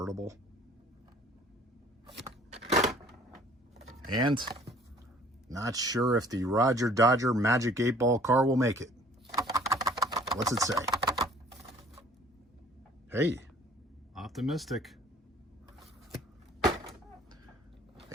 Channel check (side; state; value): both; normal; correlation 0.54